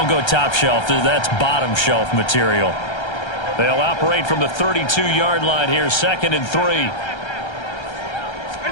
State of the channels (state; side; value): late; right; 1.3 ms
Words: go top shelf. That's bottom shelf material. They'll operate from the 32-yard line here, 2nd and 3.